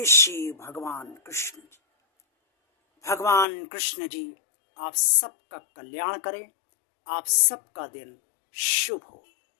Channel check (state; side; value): drops out; right; at 3.5 s